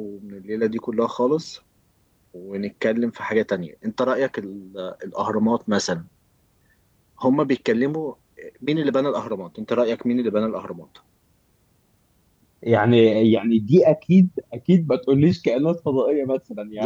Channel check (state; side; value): identical; both; correlation 1.00